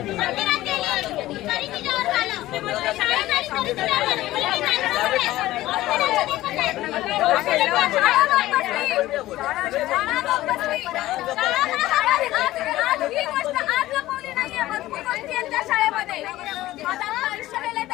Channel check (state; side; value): quieter; right; 16.1 dB